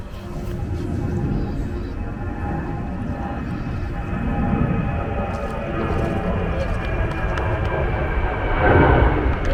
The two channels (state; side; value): identical; both; correlation 1.00